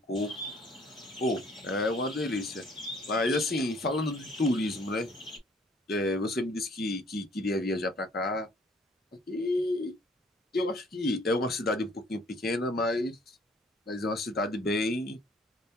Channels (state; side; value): normal; both; correlation 0.59